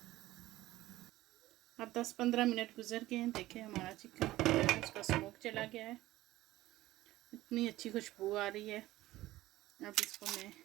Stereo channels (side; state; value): left; quieter; 16.5 dB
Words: अब 10-15 मिनट गुजर गए हैं। देखिए हमारा चिकन उसका स्मोक चला गया है, इतनी अच्छी खुशबू आ रही है। अब इसको मैं